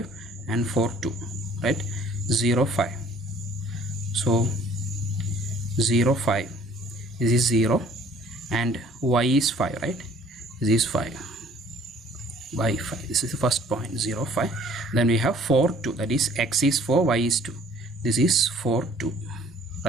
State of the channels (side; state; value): both; normal; correlation 0.55